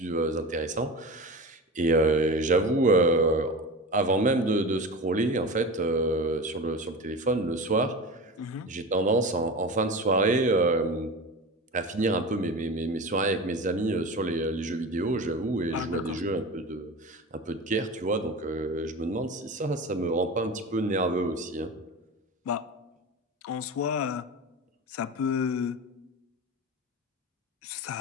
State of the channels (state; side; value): normal; both; correlation 0.29